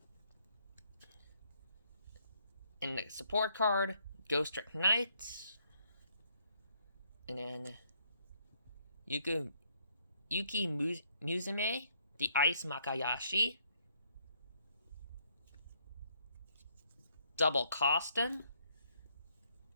In the support card, Ghost Trick Knight. And then Yuki Musume, the Ice Makayashi. Double Costin.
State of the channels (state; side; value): inverted; both; correlation -0.70